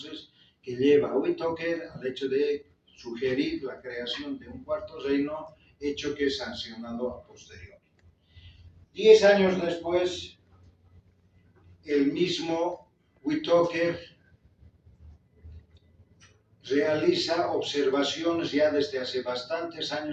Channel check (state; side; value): identical; both; correlation 1.00